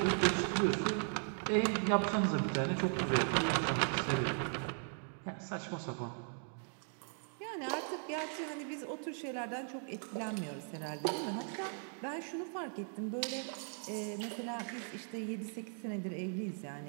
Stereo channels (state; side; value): silent; left; 52 dB below the other